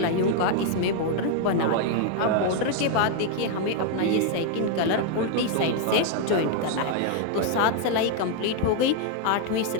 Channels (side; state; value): both; different; correlation 0.00